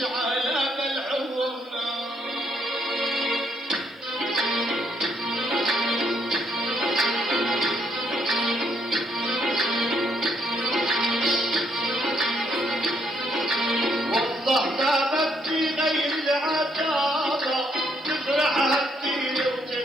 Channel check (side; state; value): both; normal; correlation 0.72